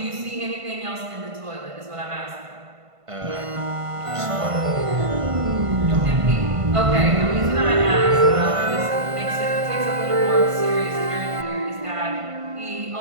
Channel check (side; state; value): left; late; 1.5 ms